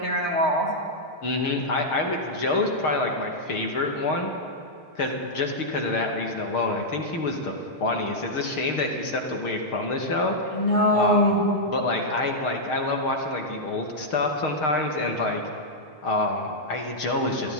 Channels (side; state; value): right; late; 6.5 ms